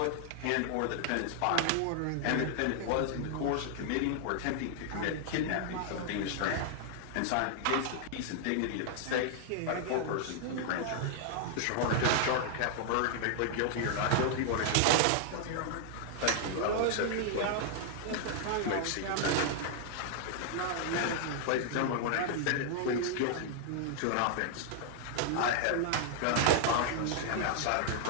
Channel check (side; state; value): both; different; correlation 0.00